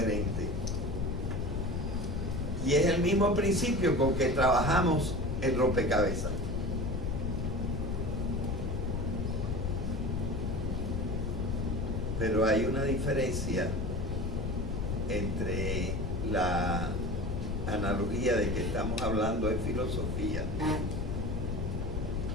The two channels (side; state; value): left; noise; rumble, 2 dB below the sound